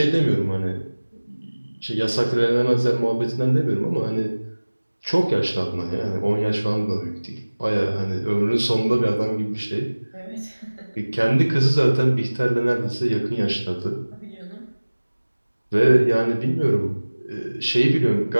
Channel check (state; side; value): inverted; both; correlation -1.00